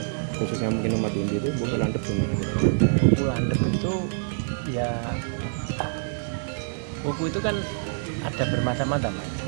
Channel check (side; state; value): left; silent; digital silence